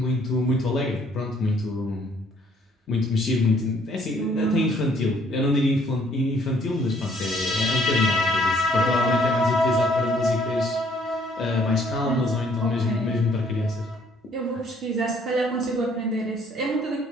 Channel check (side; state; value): both; normal; correlation 0.63